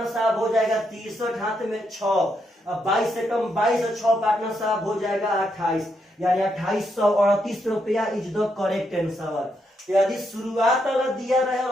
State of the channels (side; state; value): both; normal; correlation 0.79